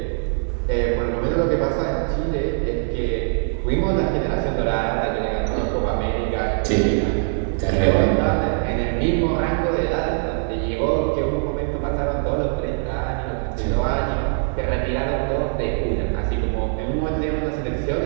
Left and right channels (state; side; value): silent; left; 64 dB below the other